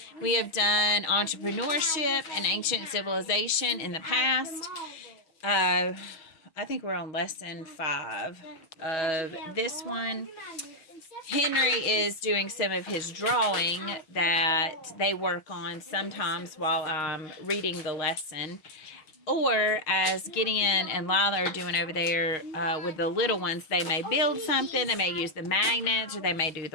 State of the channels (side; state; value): right; late; 6.3 ms